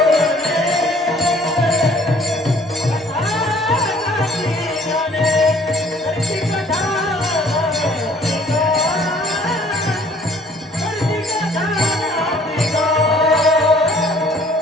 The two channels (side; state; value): both; normal; correlation 0.57